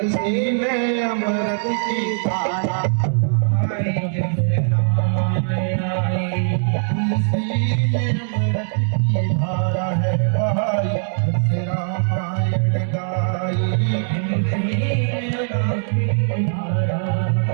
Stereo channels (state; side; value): silent; left; 65 dB below the other